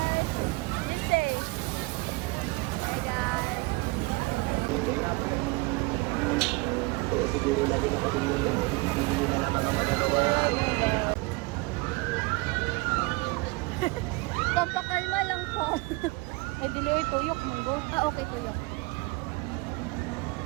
Siguro lagi na pati yung pipili nyo na naman ang magagawa. Pampakalma lang po. Ay, dili oy tuyok monggo. Ah, okay tuyok.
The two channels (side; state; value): left; quieter; 25.1 dB